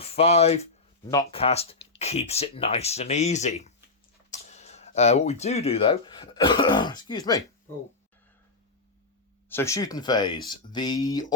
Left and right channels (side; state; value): right; quieter; 3.5 dB